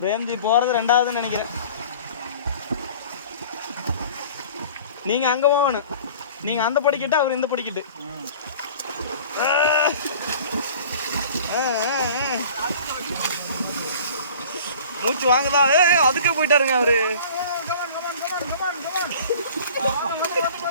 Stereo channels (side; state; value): both; inverted; correlation -0.45